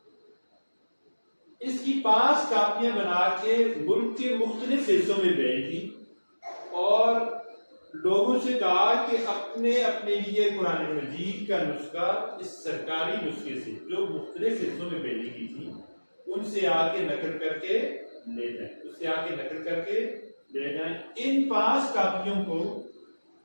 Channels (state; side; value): inverted; both; correlation -1.00